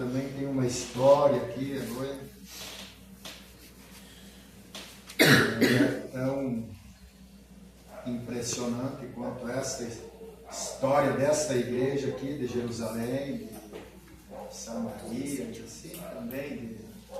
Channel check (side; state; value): both; identical; correlation 1.00